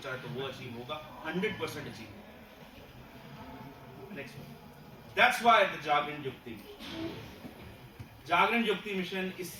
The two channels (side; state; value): both; identical; correlation 1.00